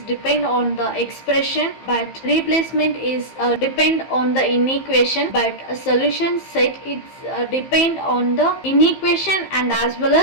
depend on the expression, but replacement is depend on the inequation, but a solution set, it's depend on the inequation and as well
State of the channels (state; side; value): late; right; 15 ms